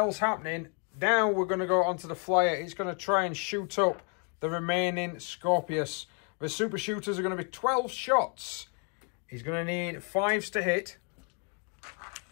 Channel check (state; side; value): quieter; right; 38.2 dB